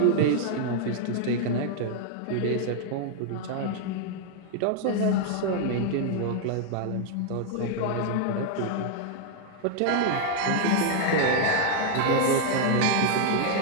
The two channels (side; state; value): both; different; correlation 0.00